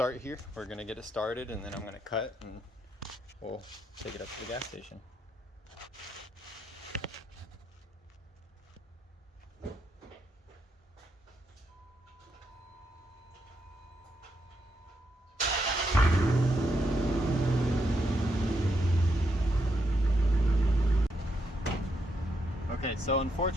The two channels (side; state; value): both; normal; correlation 0.79